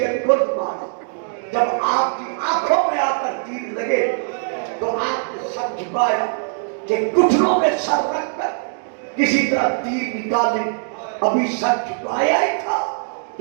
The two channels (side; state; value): left; silent; 65 dB below the other